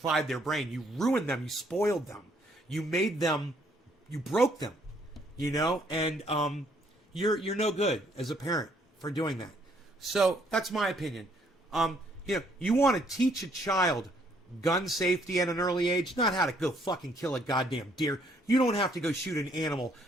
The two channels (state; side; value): normal; both; correlation 0.67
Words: their brain. You ruined them. You spoiled them. You made them. You broke them. You know, and you're no good as a parent for doing that. So that's my opinion. You know, you want to teach a child gun safety at an early age, not how to go fucking kill a goddamn deer. You don't have to go shoot an animal